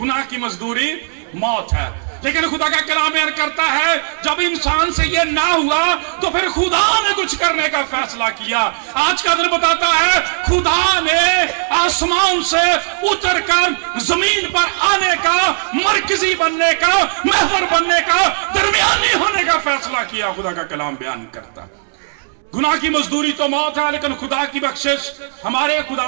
की मजदूरी मौत है। लेकिन खुदा का कलाम बयान करता है जब इंसान से ये ना हुआ तो फिर खुदा ने कुछ करने का फैसला किया। आज का दिन बताता है खुदा ने आसमान से उतरकर जमीन पर आने का, मरकजी बनने का, महवर बनने का, दरमियानी होने का फैसला किया। खुदा का कलाम बयान करता गुनाह की मजदूरी तो मौत है, लेकिन खुदा की बख्शिश हमारे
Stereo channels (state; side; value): silent; left; 68 dB below the other